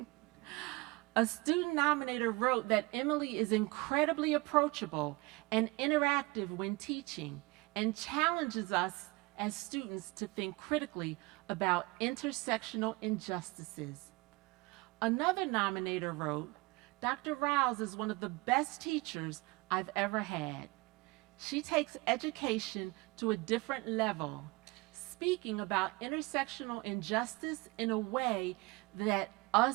A student nominator wrote that Emily is incredibly approachable and interactive when teaching and challenges us as students to think critically about intersectional injustices. Another nominator wrote, Dr. Riles is one of the best teachers I've ever had. She takes education to a different level, speaking about intersectional injustice in a way that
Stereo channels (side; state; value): left; quieter; 23.8 dB